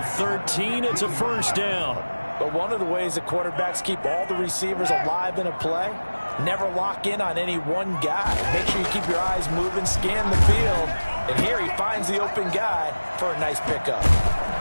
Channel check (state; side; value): inverted; both; correlation -1.00